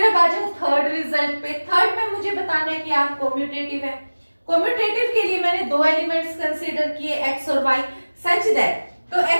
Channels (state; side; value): inverted; both; correlation -1.00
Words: अब आ जाओ थर्ड रिजल्ट पे। थर्ड में मुझे बताना है कि आप कॉम्यूटेटिव है। कॉम्यूटेटिव के लिए मैंने दो एलिमेंट्स कंसीडर किए x और y, सच दैट तो